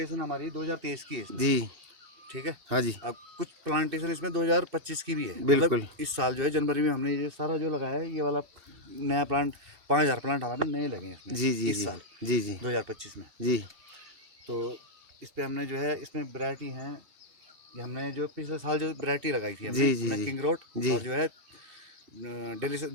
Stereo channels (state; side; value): late; left; 2.6 ms